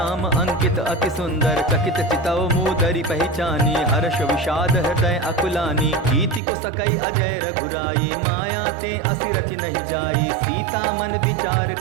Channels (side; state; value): left; drops out; at 6.4 s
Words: अंकित अति सुंदर। चकित चितौ मूदरि पहचानी हर्ष विषाद हृदय अकुलानी। कीति को सकई अजय रघुराई माया ते असि रचि नहीं जाई। सीता मन विचार